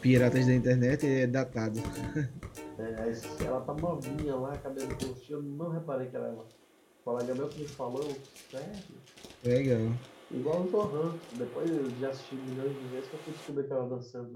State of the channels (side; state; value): both; identical; correlation 1.00